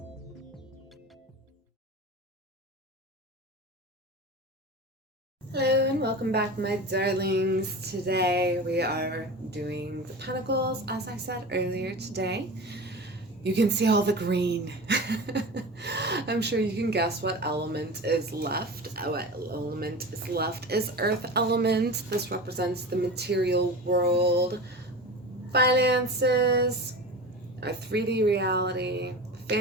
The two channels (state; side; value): normal; both; correlation 0.30